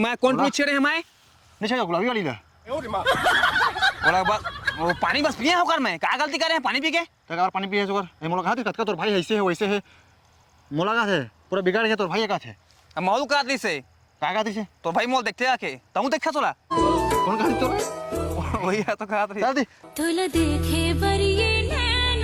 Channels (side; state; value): both; identical; correlation 1.00